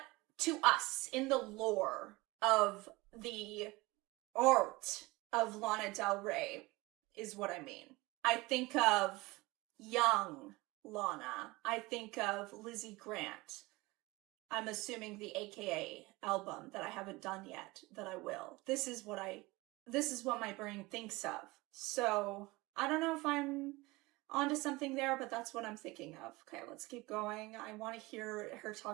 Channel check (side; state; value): left; quieter; 22.1 dB